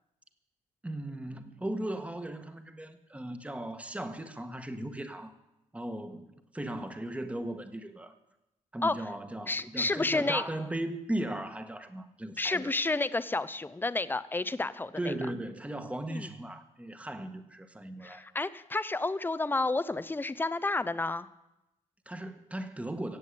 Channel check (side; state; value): both; normal; correlation 0.65